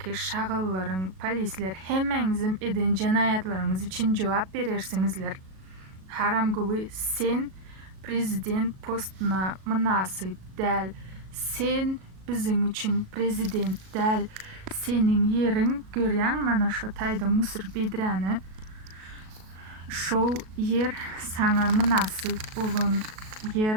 şagallaryň, polisler hemmeňizim eden jenaýatlaryňyz üçin jogap berersiňizler. Haram guly sen prezident postuna münasip däl. Sen biziň üçin prezident däl. Seniň ýeriň görýäň mana şo taýda Musur Bedräni. Şol yer saňa münasip bolan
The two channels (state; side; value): late; left; 37 ms